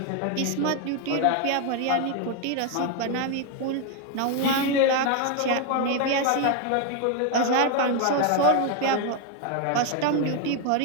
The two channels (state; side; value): different; both; correlation 0.01